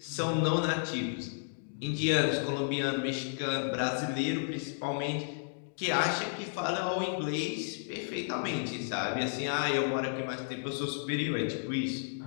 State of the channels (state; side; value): silent; right; digital silence